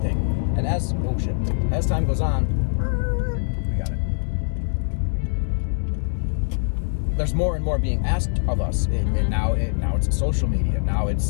And as time goes on, we got it. There's more and more being asked of us. And now it's social media. Now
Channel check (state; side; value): silent; right; digital silence